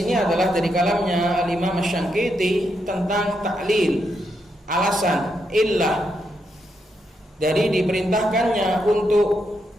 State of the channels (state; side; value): normal; both; correlation 0.81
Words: adalah dari kalamnya Al-Imam Asy-Syanqiti tentang ta'lil, alasan, illah dari diperintahkannya untuk